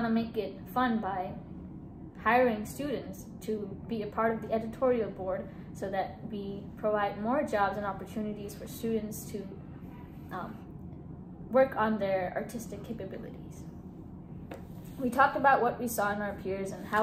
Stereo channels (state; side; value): identical; both; correlation 1.00